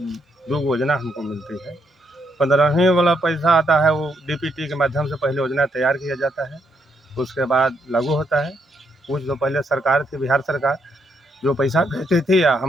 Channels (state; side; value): normal; both; correlation 0.76